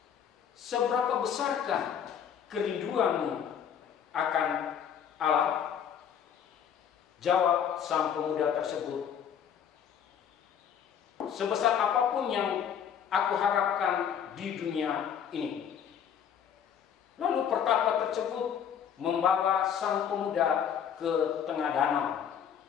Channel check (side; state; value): right; quieter; 8.4 dB